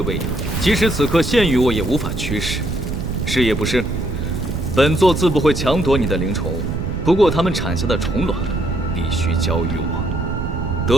养，即使此刻现于我也无法驱使，是也不是？本座自不会强夺你的灵虫，不过它们产下的虫卵必须交予我。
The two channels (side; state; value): right; noise; rumble, 4 dB below the sound